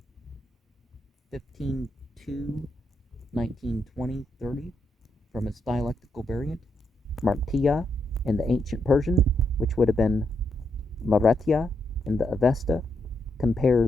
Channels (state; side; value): normal; both; correlation 0.80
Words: 15:2, 19, 20, 30, from its dialectical variant, Martiya in the ancient Persian, which would have been Maretya in the Avesta.